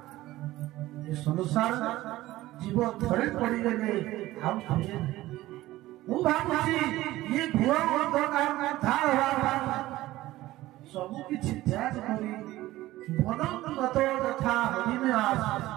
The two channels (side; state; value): left; quieter; 16.6 dB